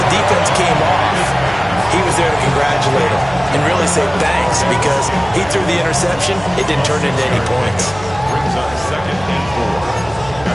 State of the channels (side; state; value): right; noise; hum, 17 dB below the sound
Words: defense came off, he was there to congratulate him and really say thanks because he threw the interception. It didn't turn into any points. Brings up 2nd and 4